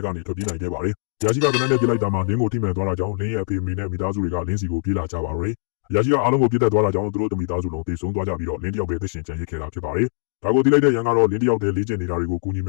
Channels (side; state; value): right; silent; digital silence